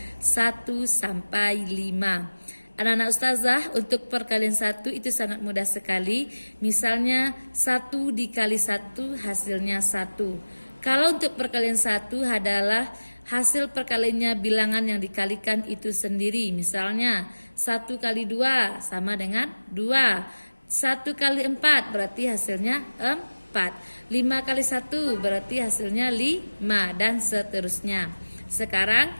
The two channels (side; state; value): both; inverted; correlation -1.00